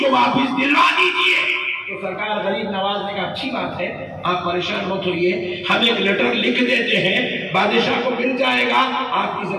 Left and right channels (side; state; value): both; identical; correlation 1.00